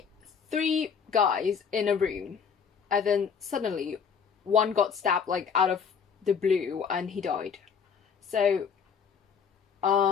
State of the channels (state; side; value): quieter; right; 6.6 dB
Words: 3 guys in a room, and then suddenly one got stabbed like out of the blue and he died. So